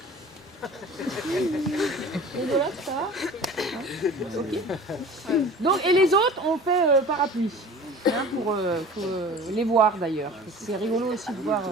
Rigolote, ça va? Ok. Donc, et les autres, on fait parapluie. Hein, pour les voir d'ailleurs. C'est rigolo aussi de voir.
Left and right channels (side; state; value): both; normal; correlation 0.41